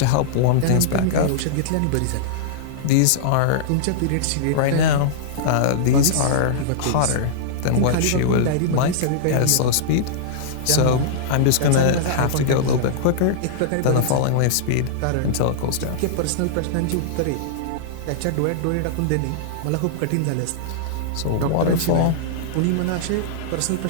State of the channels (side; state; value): both; different; correlation -0.02